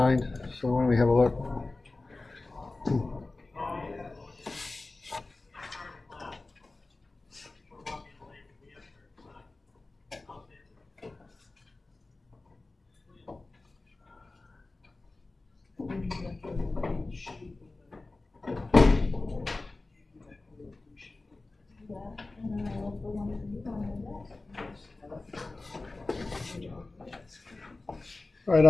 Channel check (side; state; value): right; quieter; 3.3 dB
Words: So why don't we have a look? All right,